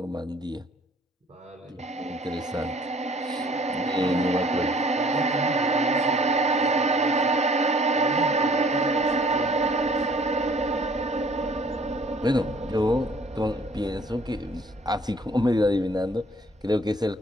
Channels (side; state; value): both; normal; correlation 0.56